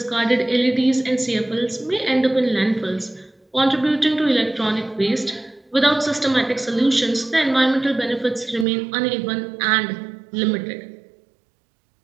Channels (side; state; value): left; drops out; at 8.7 s